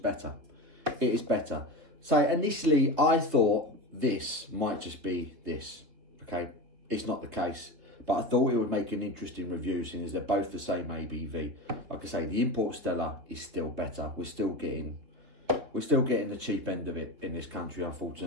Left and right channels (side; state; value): left; late; 3.5 ms